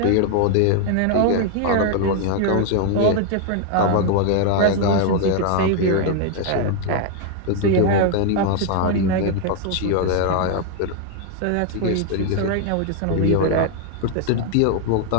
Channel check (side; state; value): both; different; correlation 0.00